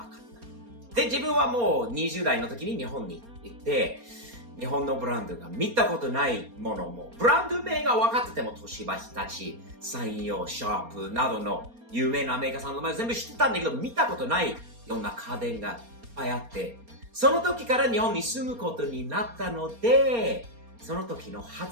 かった。で、自分はもう20代の時に日本に行って、日本のブランドが見たことないものも、ブランド名が分かってても、東芝、日立、三洋、シャープなどの有名なメーカーさんの前全部知ってたんだけど、見たことないような家電がいっぱいあって、その時から日本に住むことになったので、その時の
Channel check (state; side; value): late; left; 4.3 ms